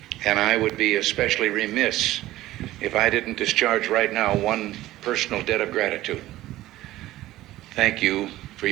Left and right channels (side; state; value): left; quieter; 15.7 dB